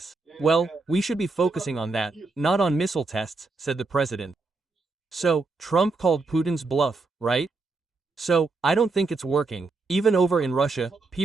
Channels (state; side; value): quieter; left; 3.7 dB